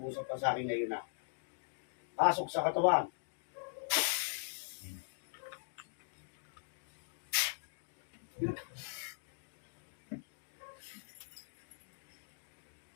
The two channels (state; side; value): silent; right; digital silence